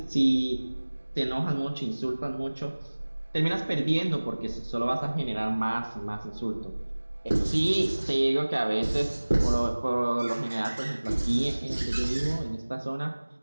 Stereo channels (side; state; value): both; inverted; correlation -1.00